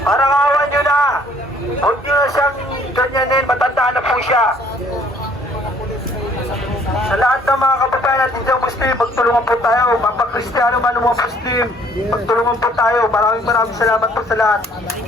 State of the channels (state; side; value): normal; both; correlation 0.60